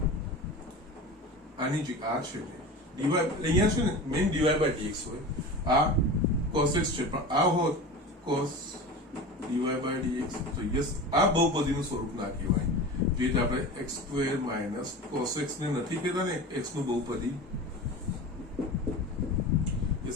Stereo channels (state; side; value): normal; both; correlation 0.32